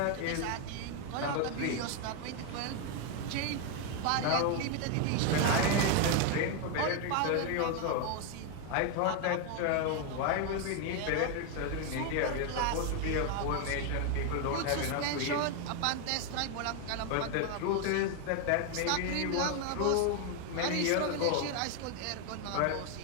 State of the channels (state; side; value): different; both; correlation 0.01